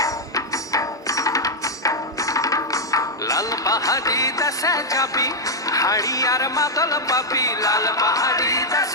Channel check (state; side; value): normal; both; correlation 0.00